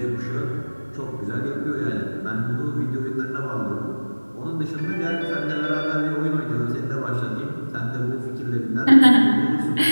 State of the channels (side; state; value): both; inverted; correlation -1.00